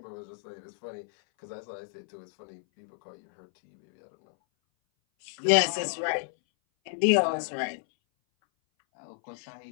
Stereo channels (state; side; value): silent; right; 58 dB below the other